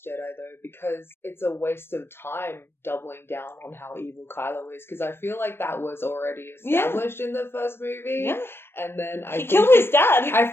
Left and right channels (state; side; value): late; right; 0.11 ms